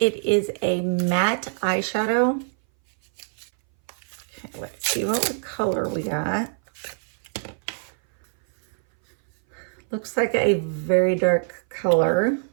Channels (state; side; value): silent; left; 60 dB below the other